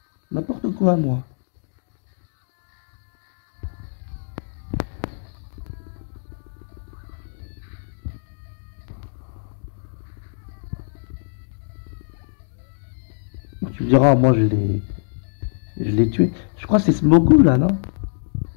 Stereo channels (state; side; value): silent; right; digital silence